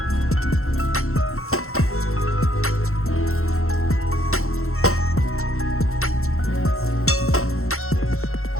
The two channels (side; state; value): right; late; 0.62 ms